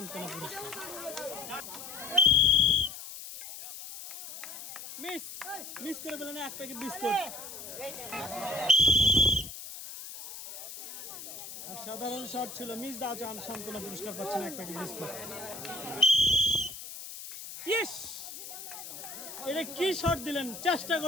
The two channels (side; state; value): left; noise; hiss, 11 dB below the sound